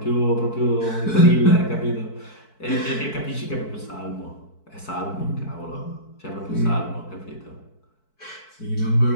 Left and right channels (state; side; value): late; right; 4.6 ms